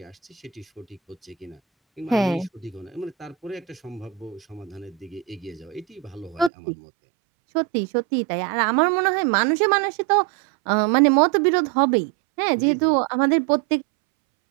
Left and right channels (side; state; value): left; drops out; at 6.5 s